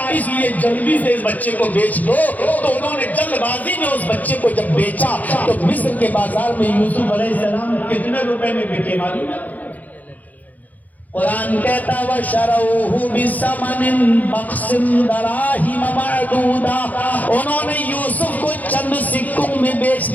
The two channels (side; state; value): right; late; 0.079 ms